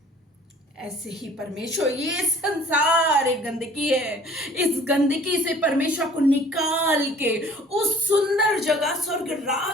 ऐसे ही परमेश्वर, ये संसार एक गंदगी है, इस गंदगी से परमेश्वर को निकाल के उस सुंदर जगह स्वर्ग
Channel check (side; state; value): both; normal; correlation 0.52